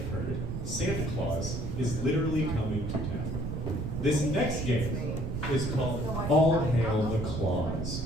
heard, Santa Claus is literally coming to town. This next game is called All Hail the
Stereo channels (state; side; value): noise; right; rumble, 3 dB below the sound